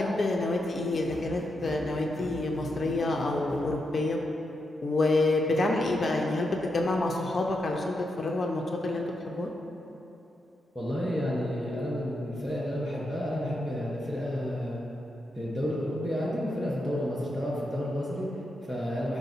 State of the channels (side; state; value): both; normal; correlation 0.84